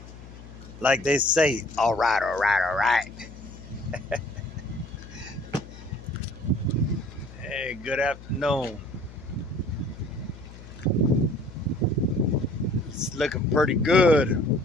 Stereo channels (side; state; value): left; noise; hum, 16 dB below the sound